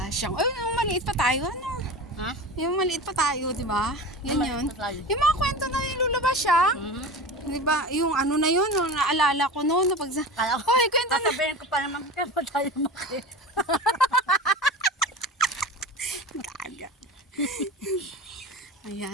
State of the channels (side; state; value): both; normal; correlation 0.31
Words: Ay, yung maliit pa tayo, ano? Ha? Yung maliit pa tayo, di ba? Yan Maliit yun. pa tayo. Yung mga kwento na ni Lula Basyang. Di ba? Yung ano na yun, yung naalala ko noon. Kala ko, Hoy, kwento na. sasabihin ko pa naman, kaya pa tayo maki. Gaga.